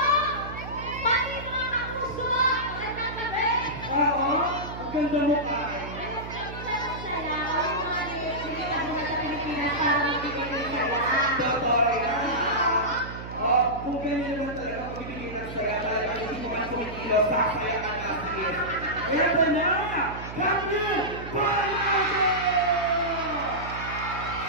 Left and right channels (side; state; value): right; noise; hum, 10 dB below the sound